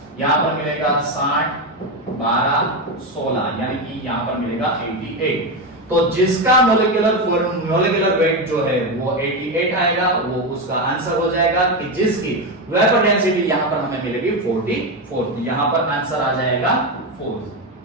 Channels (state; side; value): normal; both; correlation 0.12